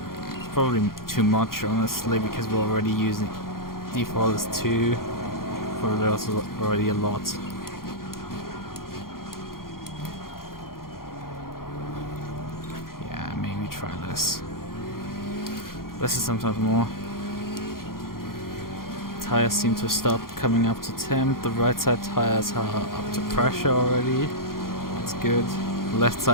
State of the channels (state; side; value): late; right; 0.92 ms